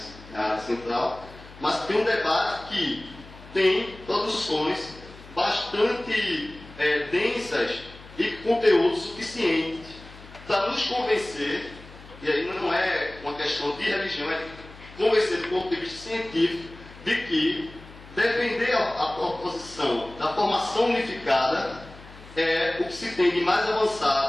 a área central, mas tem um debate que tem produções bastante densas e conteúdo suficiente para nos convencer, e aí não é uma questão de religião, é de convencer do ponto de vista científico de que defender a proposição da formação unificada é o que se tem de mais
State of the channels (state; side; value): noise; left; hum, 19 dB below the sound